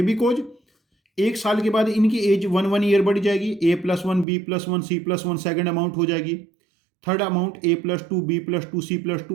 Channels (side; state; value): left; drops out; at 4.2 s